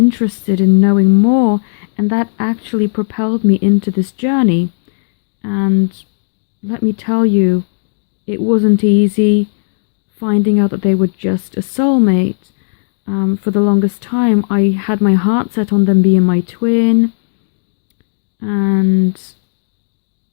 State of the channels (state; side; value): silent; right; digital silence